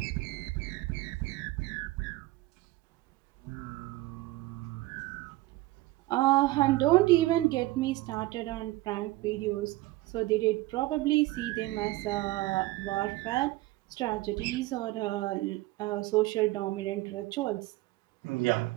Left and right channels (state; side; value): quieter; left; 18.7 dB